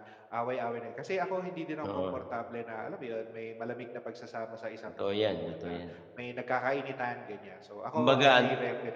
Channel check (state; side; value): identical; both; correlation 1.00